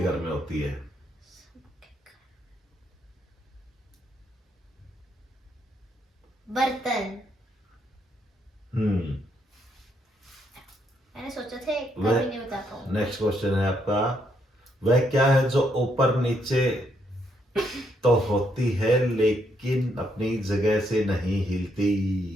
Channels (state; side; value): normal; both; correlation 0.74